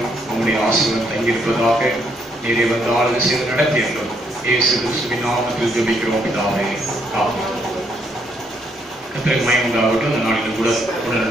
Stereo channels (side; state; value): both; normal; correlation 0.72